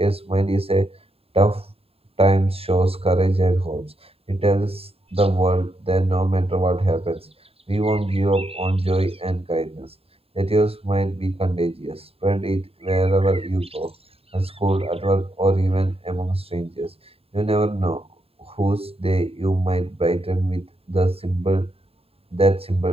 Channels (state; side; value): late; left; 0.28 ms